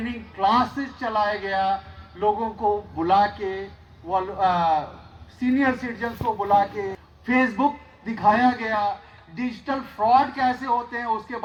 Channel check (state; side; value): identical; both; correlation 1.00